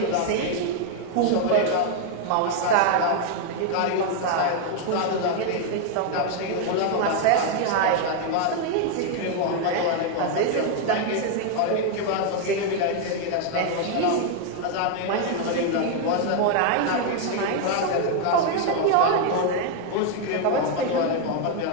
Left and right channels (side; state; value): both; different; correlation 0.00